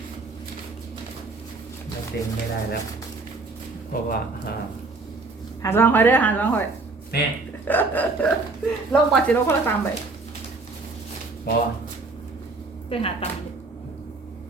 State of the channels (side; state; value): left; quieter; 3.6 dB